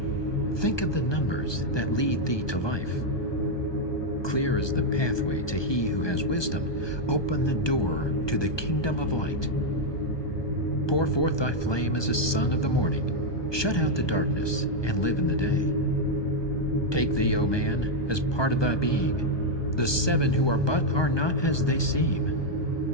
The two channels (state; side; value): late; right; 1.2 ms